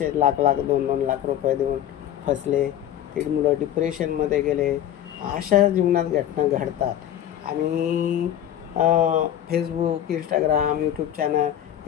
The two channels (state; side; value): quieter; right; 11.0 dB